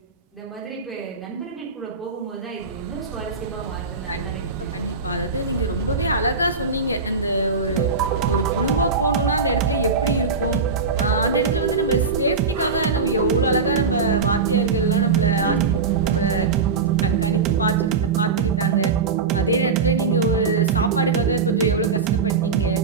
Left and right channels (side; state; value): left; quieter; 4.8 dB